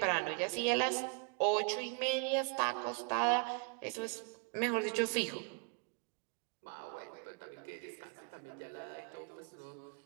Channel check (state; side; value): quieter; left; 38.8 dB